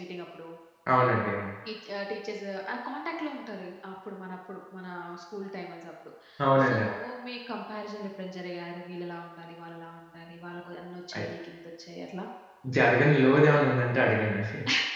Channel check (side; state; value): both; identical; correlation 1.00